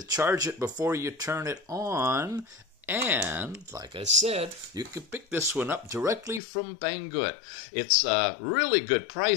charge it before you turn it on. And, like I said, you can pick this one up directly from Banggood. It's a really good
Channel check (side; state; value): right; drops out; at 6.4 s